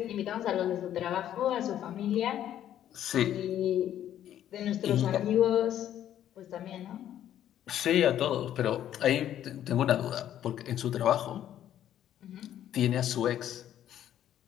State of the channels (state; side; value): quieter; right; 11.2 dB